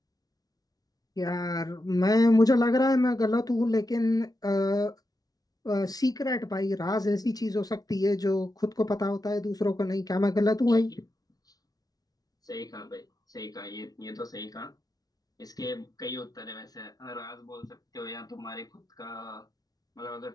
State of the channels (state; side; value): late; right; 0.18 ms